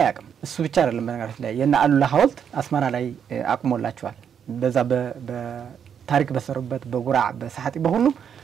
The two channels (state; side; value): quieter; left; 8.0 dB